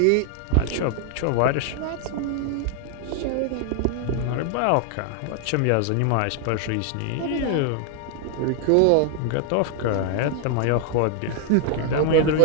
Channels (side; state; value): both; different; correlation 0.00